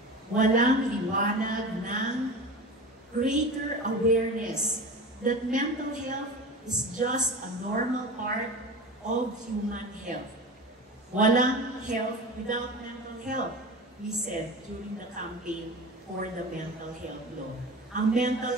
Walang liwanag ng greater awareness that mental health is just a normal part of human health. Walang health without mental health, we said during the campaign for the mental health law. Ang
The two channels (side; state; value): both; normal; correlation 0.31